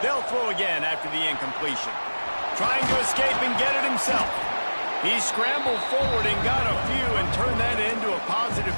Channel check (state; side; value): inverted; both; correlation -1.00